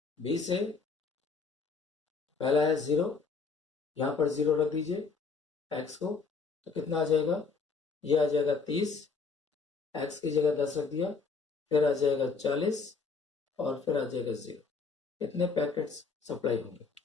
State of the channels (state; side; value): quieter; right; 4.7 dB